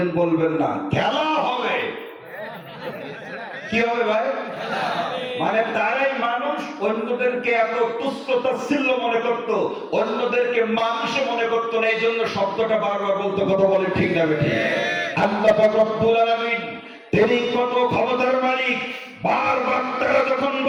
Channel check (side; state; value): both; identical; correlation 1.00